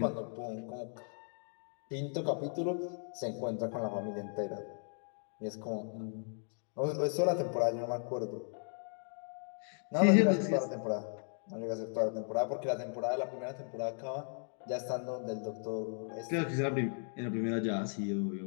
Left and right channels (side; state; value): right; silent; 54 dB below the other